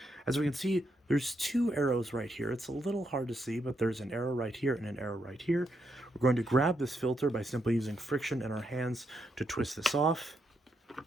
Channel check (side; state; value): both; normal; correlation 0.80